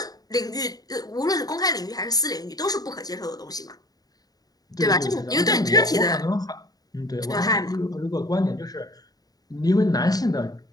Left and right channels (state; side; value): late; right; 0.18 ms